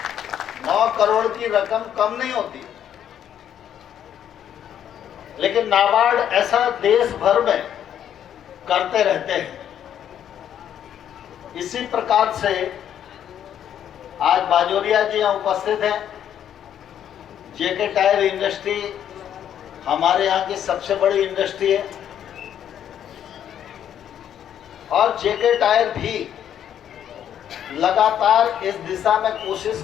9 करोड़ की रकम कम नहीं होती, लेकिन नाबार्ड ऐसा देश भर में करते रहते हैं। इसी प्रकार से आज बाजोरिया जी यहाँ उपस्थित हैं, जेके टायर इंडस्ट्री हमारे यहाँ की सबसे बड़ी इंडस्ट्री है और जेके टायर भी लगातार इस दिशा में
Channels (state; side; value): quieter; right; 9.8 dB